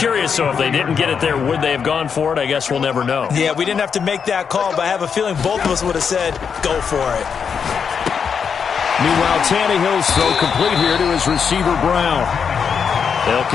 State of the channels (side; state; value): right; quieter; 6.6 dB